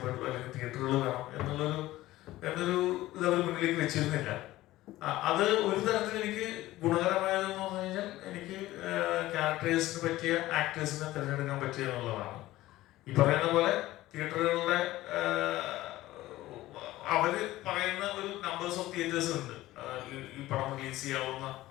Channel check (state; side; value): quieter; right; 16.5 dB